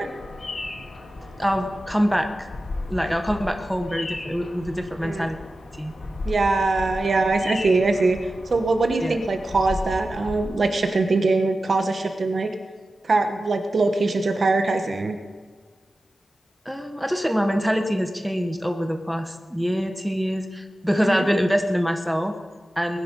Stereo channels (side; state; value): both; normal; correlation 0.94